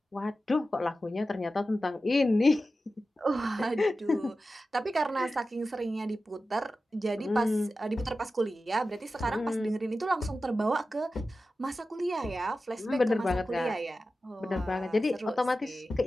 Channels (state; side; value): normal; both; correlation 0.93